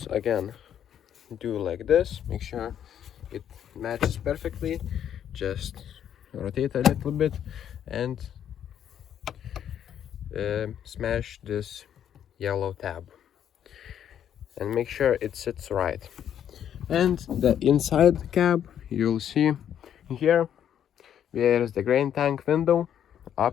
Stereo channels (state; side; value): quieter; right; 9.6 dB